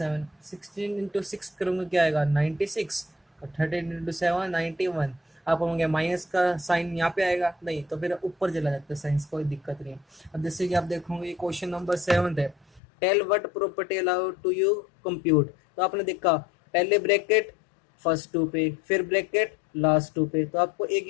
16 इंटू 6 करूँगा क्या आएगा 96, और 13 इंटू 7 91। आप कहोगे माइनस का साइन यहाँ पे आएगा, नहीं तो फिर ऊपर चला जाता है साइंस, कोई दिक्कत नहीं है। अब जैसे कि आप देखोगे क्वेश्चन नंबर 7 है, tell what property allowed to you compute. तो आपने देखा पहले ब्रैकेट फर्स्ट टू पे, फिर ब्रैकेट लास्ट टू पे, तो आपको एक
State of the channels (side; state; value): right; drops out; at 12.8 s